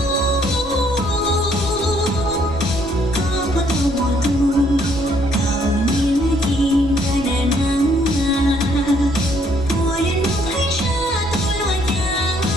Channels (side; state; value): right; noise; rumble, 14 dB below the sound